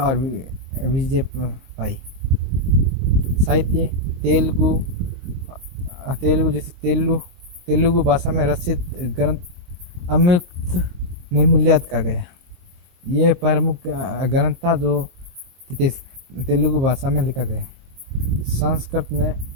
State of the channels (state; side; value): late; left; 23 ms